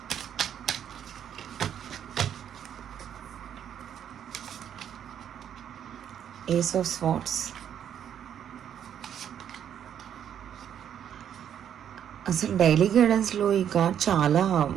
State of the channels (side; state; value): left; quieter; 9.3 dB